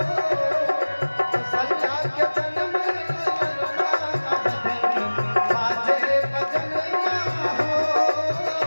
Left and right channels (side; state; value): both; inverted; correlation -1.00